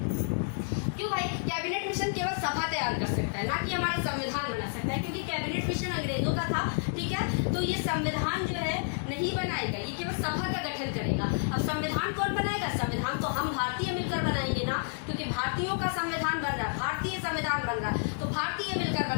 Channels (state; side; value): silent; right; 58 dB below the other